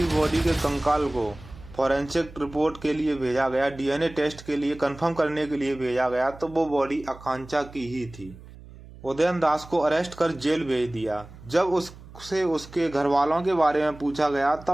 बॉडी के कंकाल को फॉरेंसिक रिपोर्ट के लिए भेजा गया, डीएनए टेस्ट के लिए कंफर्म करने के लिए भेजा गया, तो वो बॉडी आकांक्षा की ही थी। उदयन दास को अरेस्ट कर जेल भेज दिया। जब उससे उसके घर वालों के बारे में पूछा गया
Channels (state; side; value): noise; right; hum, 19 dB below the sound